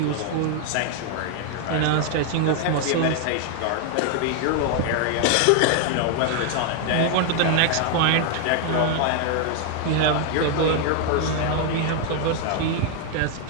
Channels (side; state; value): both; different; correlation 0.00